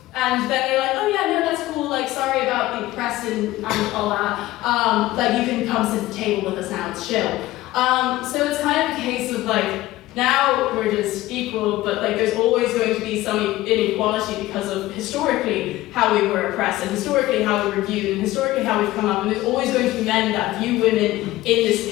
And then they're like, oh yeah, no, that's cool, like, sorry about the press and all that. Like, you can come sit at the table with us now, it's chill. So it's kind of a case of like, now we're just equal, but like, there's always going to be some inequality because of historically how we were oppressed, and historically how we were viewed, and historically how we've come up, and there's always going to be men that view women in this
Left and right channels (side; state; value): right; quieter; 16.9 dB